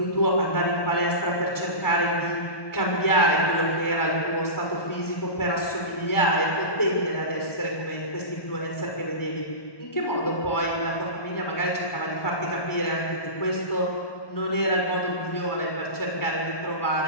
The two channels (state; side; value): late; right; 1.1 ms